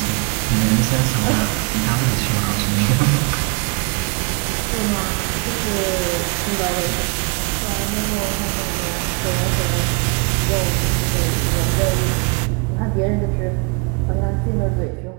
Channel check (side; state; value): left; quieter; 32.2 dB